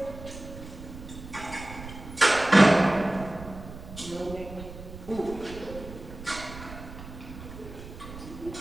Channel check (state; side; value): noise; right; rumble, 13 dB below the sound